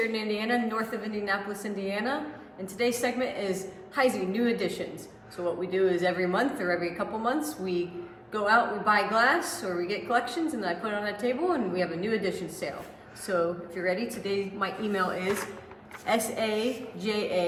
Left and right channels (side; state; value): both; identical; correlation 1.00